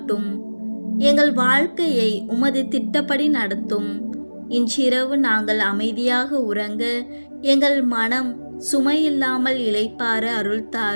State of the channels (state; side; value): inverted; both; correlation -1.00